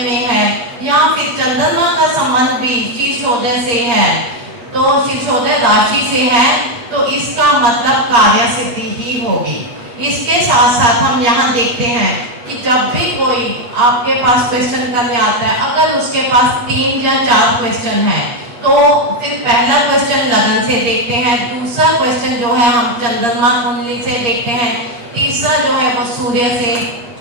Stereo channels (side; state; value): left; late; 8.5 ms